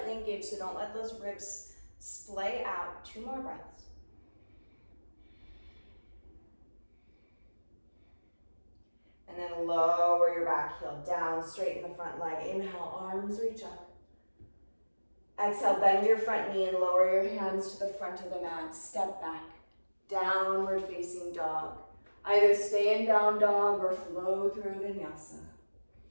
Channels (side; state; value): both; inverted; correlation -1.00